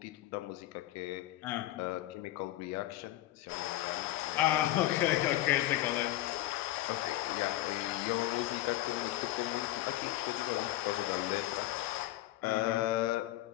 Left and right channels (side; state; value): right; quieter; 15.2 dB